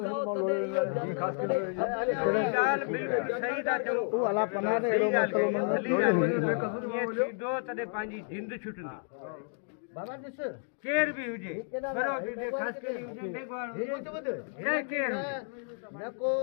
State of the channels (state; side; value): silent; right; 57 dB below the other